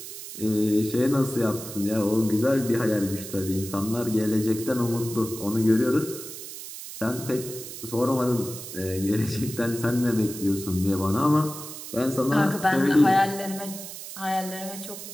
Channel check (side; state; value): right; noise; hiss, 11 dB below the sound